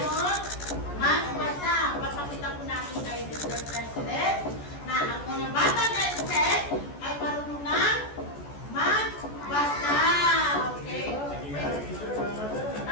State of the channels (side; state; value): right; late; 14 ms